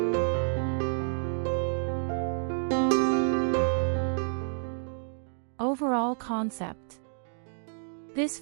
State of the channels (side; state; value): left; silent; digital silence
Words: Overall concept. This